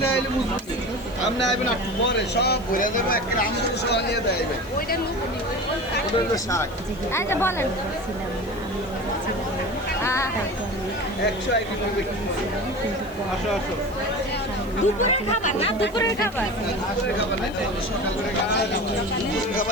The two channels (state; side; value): noise; left; hiss, 24 dB below the sound